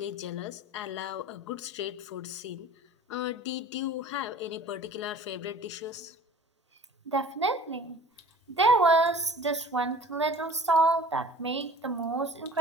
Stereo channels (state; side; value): normal; both; correlation 0.46